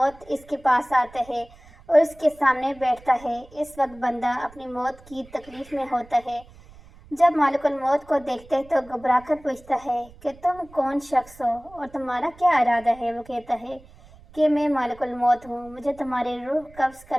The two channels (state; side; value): noise; right; rumble, 23 dB below the sound